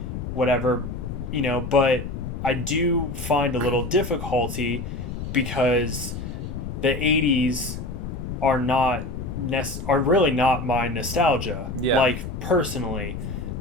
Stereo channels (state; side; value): noise; left; rumble, 6 dB below the sound